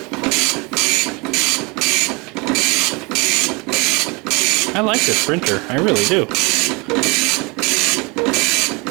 I like this printer, I really do.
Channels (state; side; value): quieter; left; 27.7 dB